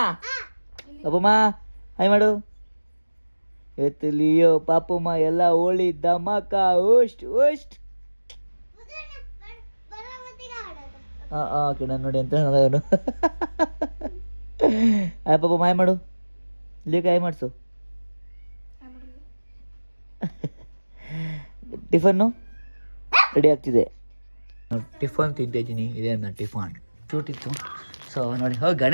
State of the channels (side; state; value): both; inverted; correlation -1.00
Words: ಅಪ್ಪಮ್ಮ ಹಾಯ್ ಮಾಡು. ಇವತ್ತು ಲಿಯೋ ಪಾಪಮ್ಮ ಎಲ್ಲ ಹೋಳಿ ಧಮಾಕ ಓಸ್ಟ್. ಹಾಂ ನಾನು ನೋಡಿ ಅಂತ ಅವನು. ಪಾಪ ಮಾಯ ಮಾಡು, ಇಲ್ಲಿ ಕಾಯಿ ಮಾಡಿಸು. ಟಿಫನ್ನು ರೆಡಿ ಆಗ್ತಿದೆ. ಟಿಫನ್ ತಿಂತಾ ಇದ್ದೀನಿ. ಇದೆ ನನ್ನ ಟಿಫನ್ ಶೂಟ್ ಇತ್ತು. ಸೊ ನೋಡಿ